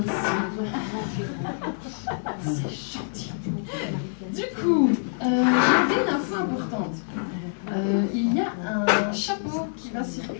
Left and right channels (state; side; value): silent; right; digital silence